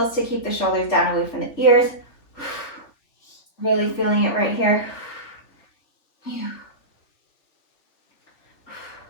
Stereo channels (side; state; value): right; late; 3.4 ms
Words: to keep the shoulders down away from the ears. Really feeling it right here.